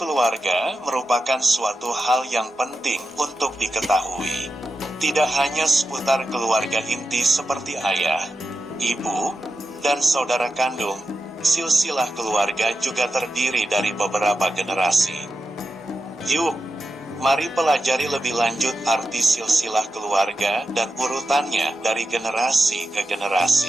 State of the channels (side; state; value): both; normal; correlation 0.89